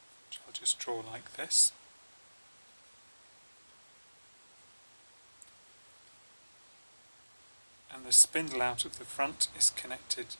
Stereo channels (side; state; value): both; inverted; correlation -1.00